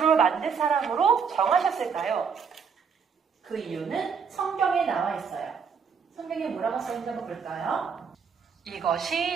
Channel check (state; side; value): quieter; left; 6.2 dB